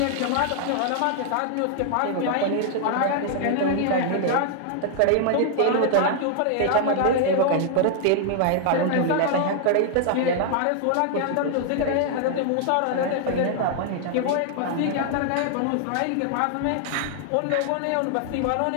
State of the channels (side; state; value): both; different; correlation 0.00